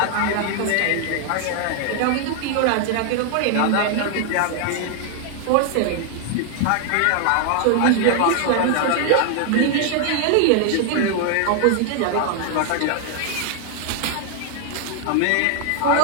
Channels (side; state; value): both; different; correlation 0.00